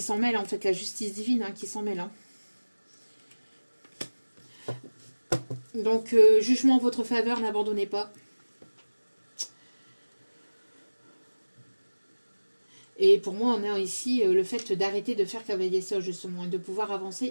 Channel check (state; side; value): inverted; both; correlation -1.00